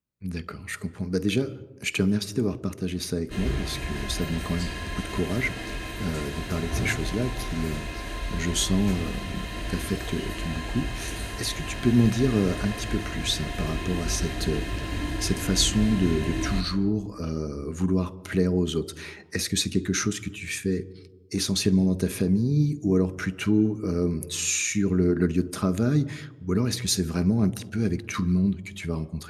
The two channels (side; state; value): both; identical; correlation 1.00